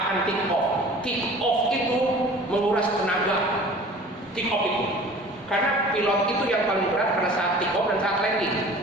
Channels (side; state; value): both; normal; correlation 0.45